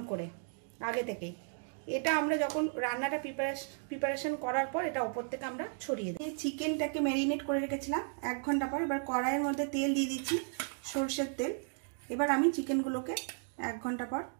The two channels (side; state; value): left; silent; 55 dB below the other